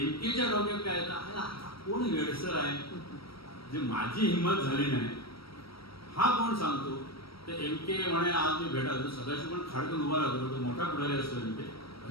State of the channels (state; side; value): late; right; 0.75 ms